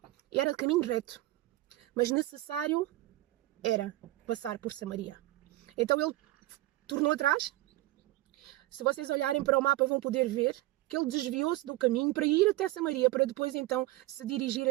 e era de caminho reto. mas necessário era passar por Samaria. Então ele tornou atrás. Se vocês olharem para o mapa vão poder ver que ele desviou-se do caminho para ir até Samaria, para depois então se dirigir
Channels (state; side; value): quieter; left; 17.5 dB